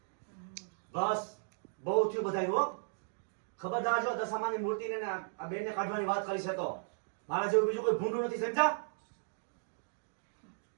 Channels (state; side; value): silent; left; digital silence